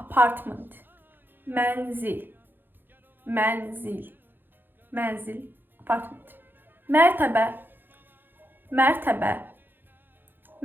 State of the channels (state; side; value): late; left; 0.096 ms